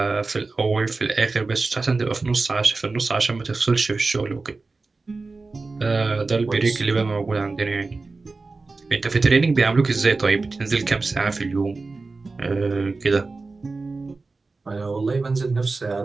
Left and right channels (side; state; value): left; quieter; 3.8 dB